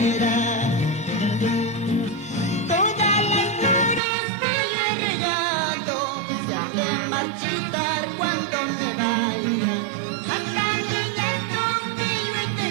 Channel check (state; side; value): drops out; left; at 4.0 s